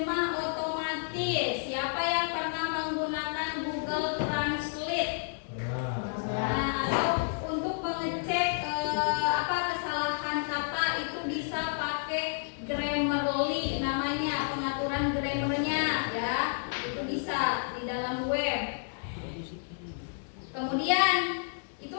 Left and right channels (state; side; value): silent; right; digital silence